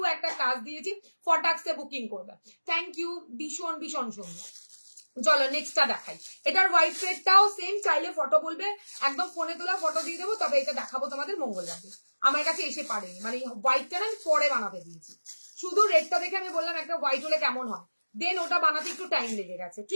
একটা কাজ দিয়েছি, ফটাক্সে বুকিং করবে। থ্যাংক ইউ, ভীষণ ভীষণ সুন্দর। চলো নেক্সটটা দেখাই। এটার হোয়াইট থ্রেডটাও সেম, চাইলে ফটো বলবে, একদম ফোনে তোলা ফটো দিয়ে দেবো, তবে এটা দেখাবো তোমাদের মঙ্গলবারে। আমার কাছে এসে পারেনি, মানে হোয়াইটটা না আমি পরে বানাতে দিয়েছি, শুধু রেডটা দেখে আমি বললাম একটা হোয়াইট হলে কেমন হয়, দেন ওটা বানাতে একটু টাইম লেগে গেছে,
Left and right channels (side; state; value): both; inverted; correlation -1.00